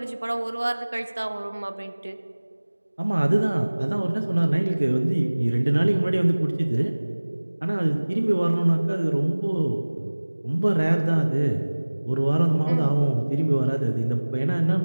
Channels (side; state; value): both; inverted; correlation -1.00